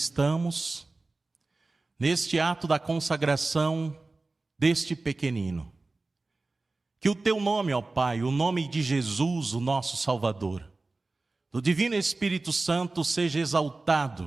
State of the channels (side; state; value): left; quieter; 3.4 dB